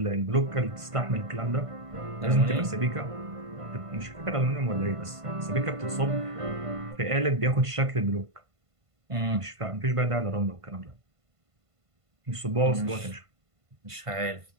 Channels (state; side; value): late; left; 1.5 ms